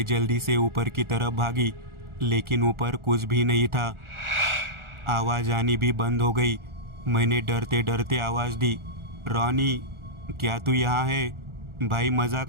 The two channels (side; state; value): left; late; 1.4 ms